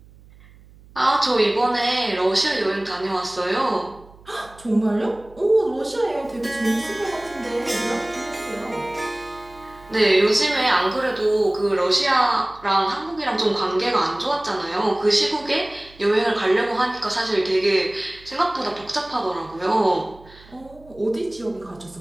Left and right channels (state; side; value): noise; right; hum, 24 dB below the sound